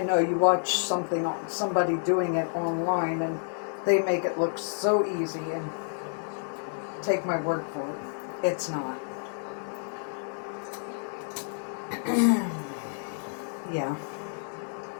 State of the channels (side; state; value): right; silent; digital silence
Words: know you watch somebody doing it online and they make it look so easy, and take my word for it, it's not. Yeah.